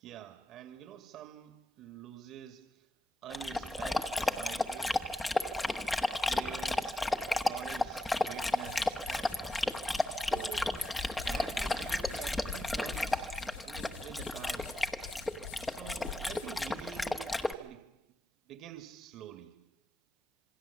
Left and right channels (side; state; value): both; normal; correlation 0.89